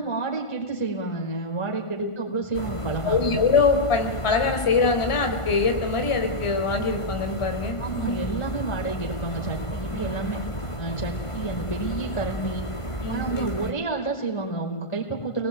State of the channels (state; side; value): late; right; 1.5 ms